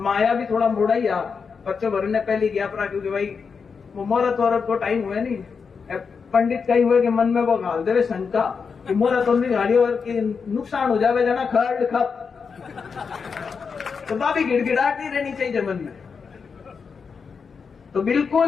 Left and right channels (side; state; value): right; quieter; 5.6 dB